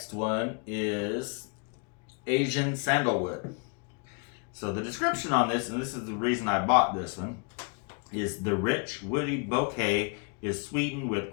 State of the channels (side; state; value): right; quieter; 35.6 dB